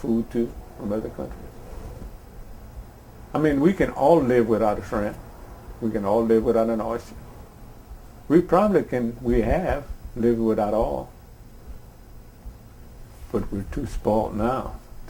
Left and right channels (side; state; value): both; identical; correlation 1.00